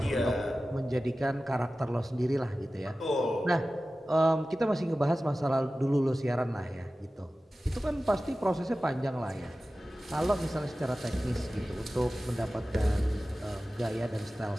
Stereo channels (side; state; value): both; normal; correlation 0.96